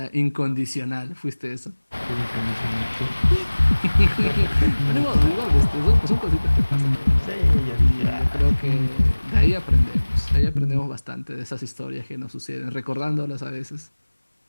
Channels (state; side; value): inverted; both; correlation -1.00